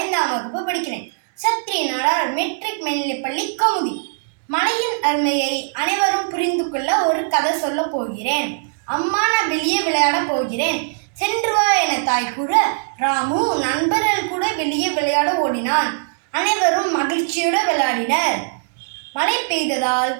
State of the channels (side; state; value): left; silent; digital silence